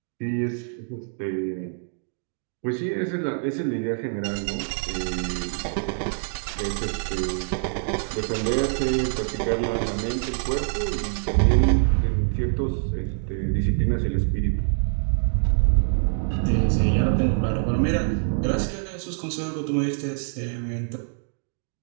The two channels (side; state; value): left; silent; digital silence